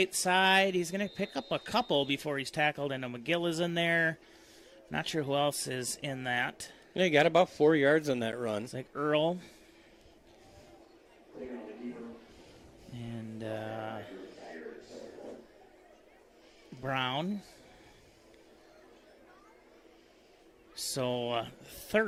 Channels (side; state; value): both; identical; correlation 1.00